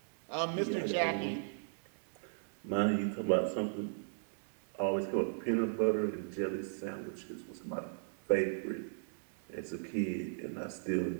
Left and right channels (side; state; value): left; silent; digital silence